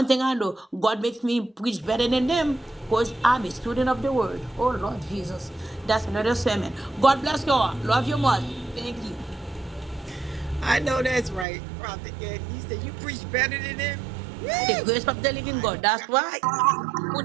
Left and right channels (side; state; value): left; drops out; at 11.5 s